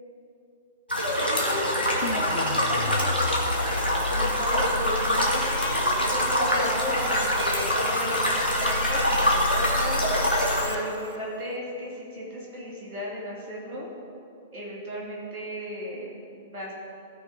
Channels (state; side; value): inverted; both; correlation -0.42